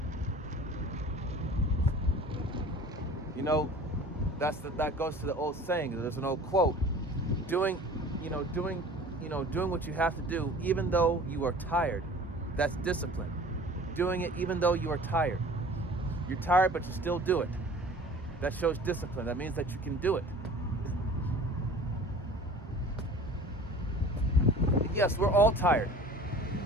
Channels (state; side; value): normal; both; correlation 0.44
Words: You know, that goes to the old saying. There's an old quote: doing what you have to do, even though you are tired. That's discipline. Doing it even though you are tired. You're tired, but you still do it. That shows discipline. That means that you can do it. Yes, we're all tired.